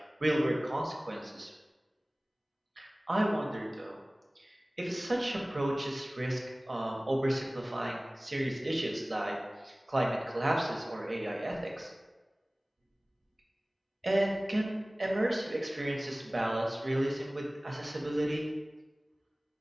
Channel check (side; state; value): both; normal; correlation 0.98